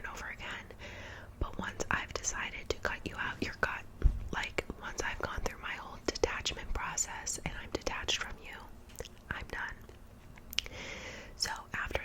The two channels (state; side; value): identical; both; correlation 1.00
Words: over again, but once I've decided to cut you out, you're cut. Like, once I've gone through my whole detachment process and I'm detached from you, I'm done. So after